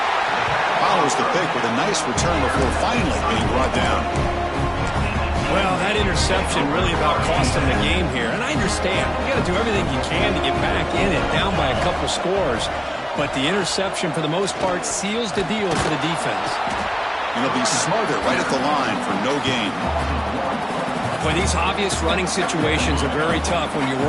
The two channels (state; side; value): identical; both; correlation 1.00